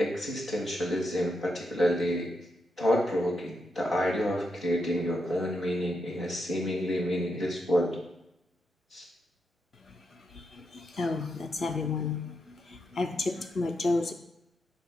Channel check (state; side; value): normal; both; correlation 0.83